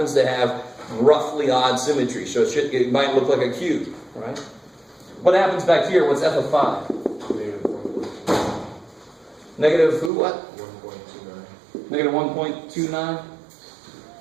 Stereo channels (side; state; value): left; drops out; at 10.1 s